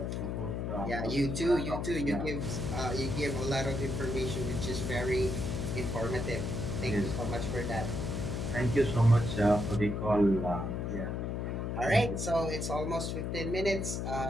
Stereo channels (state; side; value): noise; left; hum, 2 dB below the sound